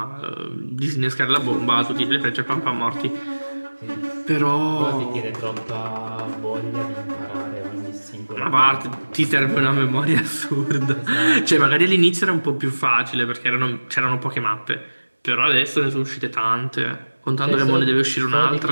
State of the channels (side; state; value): both; inverted; correlation -1.00